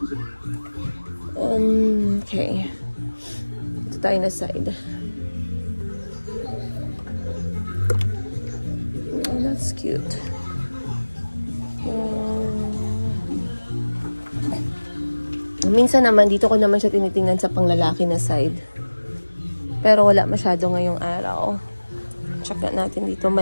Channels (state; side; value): inverted; both; correlation -1.00